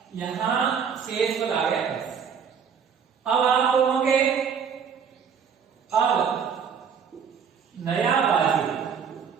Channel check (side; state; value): left; quieter; 6.9 dB